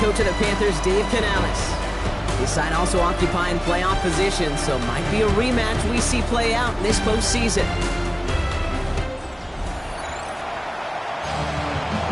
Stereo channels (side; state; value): both; identical; correlation 1.00